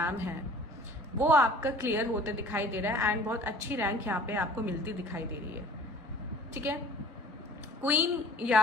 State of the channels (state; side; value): normal; both; correlation 0.48